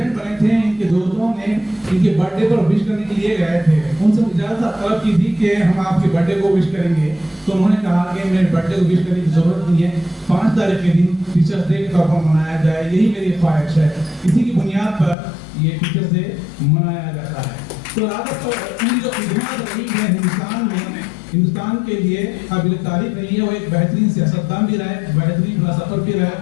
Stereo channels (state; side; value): drops out; right; at 15.2 s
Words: बने थे, इनके दोस्तों ने इनके बर्थडे पर विश करने के लिए गए थे, उनसे इजाज़त तलब की थी कि हम आपके बर्थडे को विश करेंगे। तो उन्होंने कहा कि मेरे बर्थडे को विश करने की जरूरत नहीं है, 5 तारीख के दिन टीचर्स डे के तौर पर मनाया जाए, यही मेरी ख्वाहिश है। इसी की बुनियाद पर ये टीचर्स डे मनाया जाता है। तो राजद उनकी जो खिदमत रही है हिंदुस्तान में, हिंदुस्तान के लिए काबिल तारीफ रही है। वो एक बेहतरीन सियासतदान भी रहे, बेहतरीन फिलासफर भी रहे,